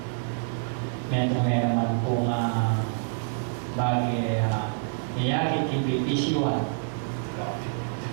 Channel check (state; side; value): silent; left; 60 dB below the other